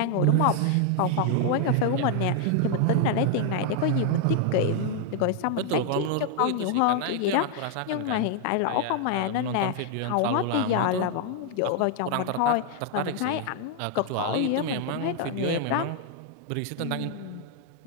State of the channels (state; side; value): different; both; correlation 0.00